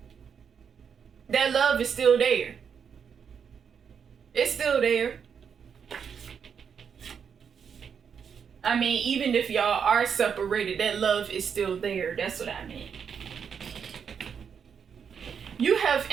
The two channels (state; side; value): quieter; left; 7.0 dB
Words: that love is still there. It's still there. I mean, even if y'all are separated, that love is still there. That's what I mean. You have